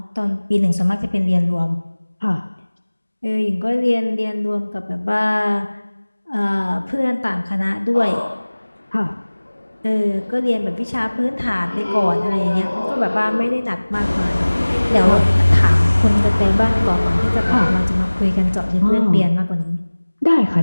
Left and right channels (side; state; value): both; inverted; correlation -1.00